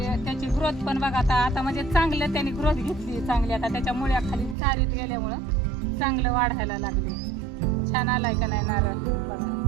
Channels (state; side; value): drops out; left; at 4.5 s